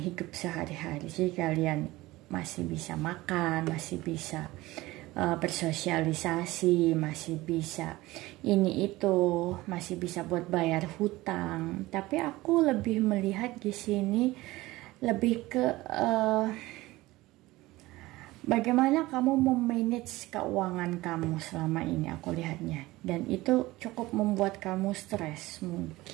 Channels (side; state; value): left; quieter; 19.0 dB